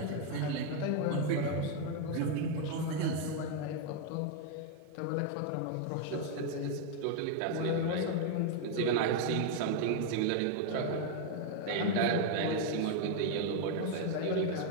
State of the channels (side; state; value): both; different; correlation 0.01